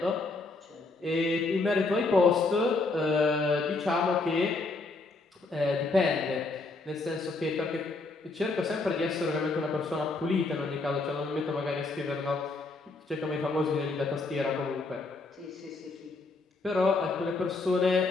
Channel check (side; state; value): right; quieter; 3.6 dB